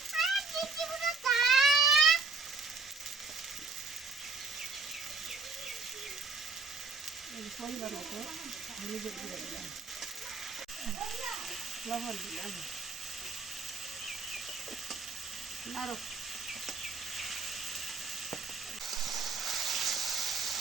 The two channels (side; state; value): left; quieter; 4.2 dB